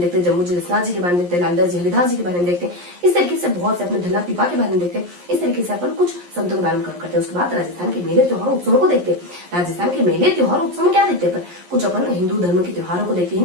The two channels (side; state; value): left; late; 11 ms